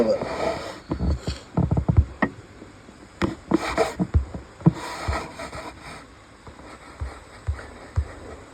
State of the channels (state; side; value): identical; both; correlation 1.00